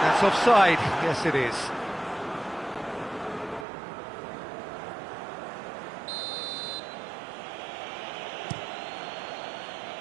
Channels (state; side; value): drops out; left; at 3.7 s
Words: offside. Yes, it is.